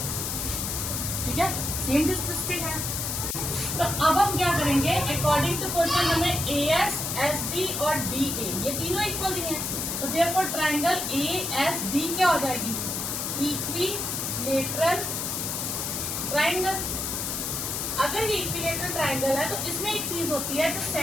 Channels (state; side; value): noise; left; hiss, 2 dB below the sound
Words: ठीक है, सेम डिस्टेंस पे है। तो अब हम क्या करेंगे, अकॉर्डिंग टू क्वेश्चन हमें AS, SD और DA ये तीनों इक्वल दिए हैं, तो देयरफॉर ट्राइंगल ASD क्या हो जाएगी, इक्विलेटरल ट्राइंगल। अगर ये इक्विलेटरल ट्राइंगल है तो इसमें एक चीज होती है, जो